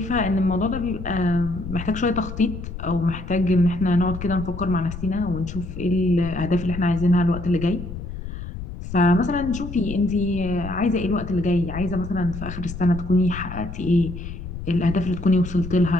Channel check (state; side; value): noise; left; rumble, 9 dB below the sound